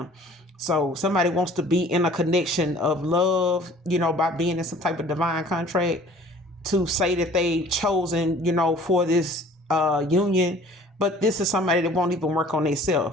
So somebody wants to be in a connection of love, by being in some type of divine contract, to say that they chosen, for this union. But this is somebody that won't even work on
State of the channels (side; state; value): both; normal; correlation 0.50